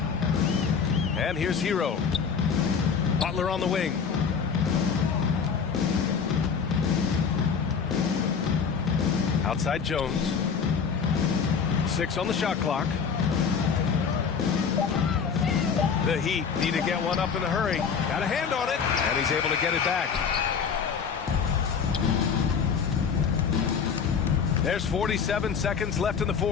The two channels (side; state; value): right; quieter; 6.3 dB